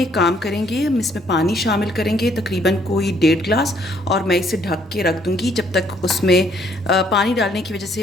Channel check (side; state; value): both; normal; correlation 0.66